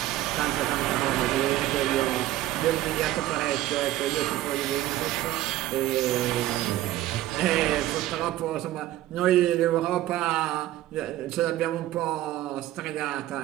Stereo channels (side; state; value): left; quieter; 14.6 dB